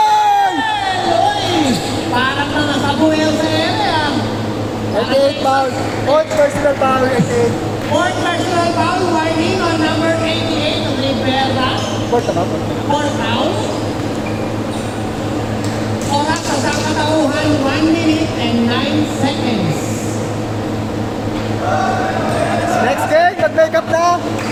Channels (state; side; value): identical; both; correlation 1.00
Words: Uy! Parang na nasabuhay sa ere ah. 88 foul. Fourth personal foul, 88. Fourth personal foul, warning on number 88 of Rivera. Fourth na ba? Fourth foul. Oras sa sakatauhan, 1 minute and 9 seconds. Next game, mag-makeup na.